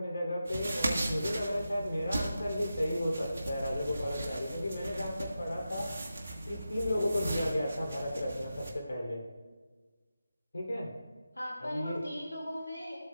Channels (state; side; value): inverted; both; correlation -0.90